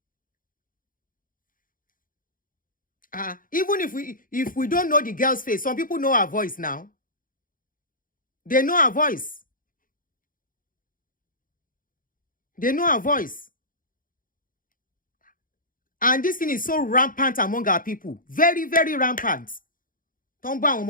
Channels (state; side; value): late; right; 0.40 ms